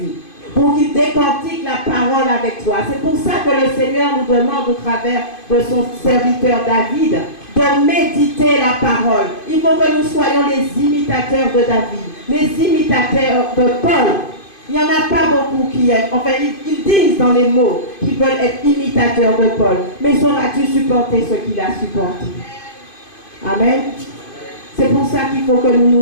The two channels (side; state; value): right; late; 2.5 ms